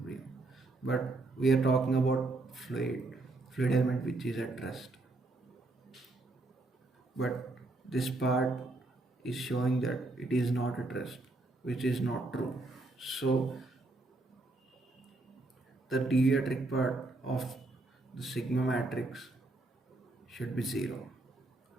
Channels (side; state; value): left; quieter; 3.0 dB